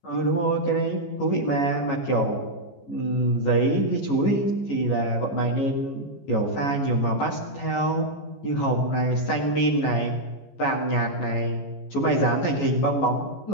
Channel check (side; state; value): right; late; 14 ms